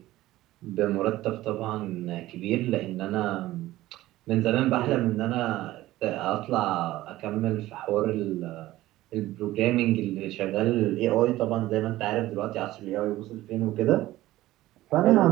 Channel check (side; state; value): left; quieter; 16.2 dB